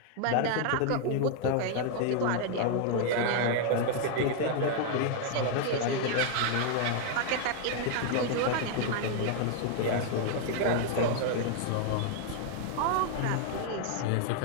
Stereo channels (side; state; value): both; different; correlation 0.00